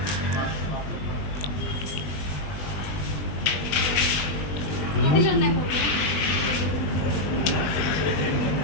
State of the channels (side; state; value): right; late; 20 ms